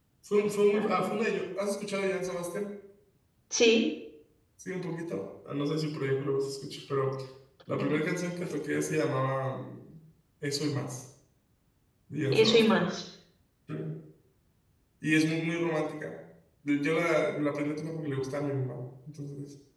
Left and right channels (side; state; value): both; identical; correlation 1.00